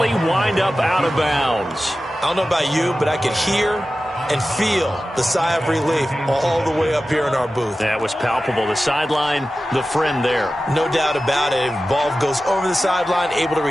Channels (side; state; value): both; normal; correlation 0.94